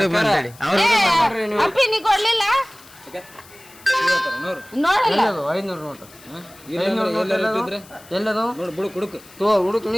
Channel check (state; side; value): noise; left; hiss, 23 dB below the sound